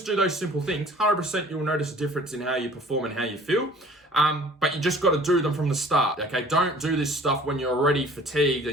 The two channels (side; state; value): both; normal; correlation 0.50